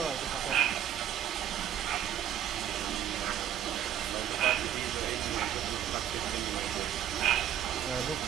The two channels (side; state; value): left; quieter; 10.2 dB